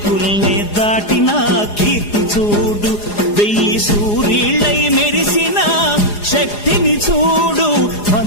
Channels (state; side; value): late; right; 4.9 ms